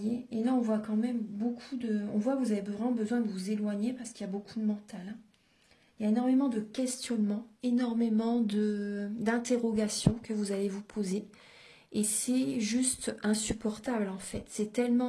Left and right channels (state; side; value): identical; both; correlation 1.00